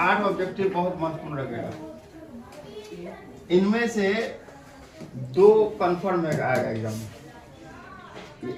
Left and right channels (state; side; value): identical; both; correlation 1.00